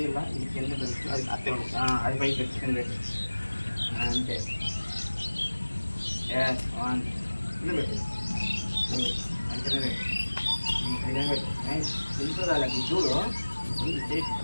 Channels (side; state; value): both; inverted; correlation -1.00